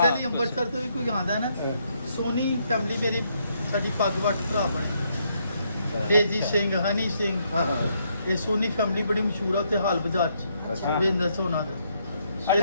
ਲਈ ਅੰਮ੍ਰਿਤਸਰ ਤੋਂ ਵੀ ਕੋਈ ਆਉਂਦਾ ਨਾ ਸੋਨੀ ਫੈਮਿਲੀ ਮੇਰੀ ਸਾਡੀ ਪੱਗ ਵੱਟ ਭਰਾ ਬਣੇ ਤੇਜੀ ਸਿੰਘ ਹਨੀ ਸਿੰਘ ਇਹ ਸੋਨੀ ਫੈਮਿਲੀ ਬੜੀ ਮਸ਼ਹੂਰ ਆ ਉੱਥੇ ਹਾਲ ਬਾਜ਼ਾਰ 'ਚ ਬਿਜ਼ਨਸ ਹੋਣਾ ਦਾ।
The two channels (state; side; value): inverted; both; correlation -0.74